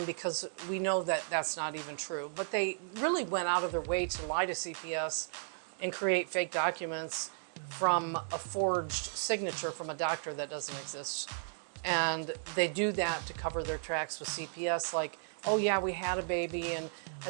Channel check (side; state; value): left; silent; digital silence